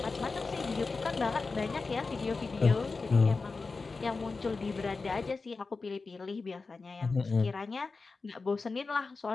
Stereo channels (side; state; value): right; quieter; 4.1 dB